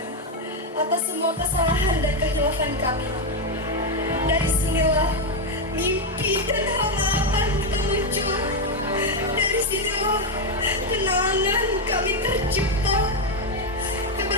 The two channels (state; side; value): normal; both; correlation 0.05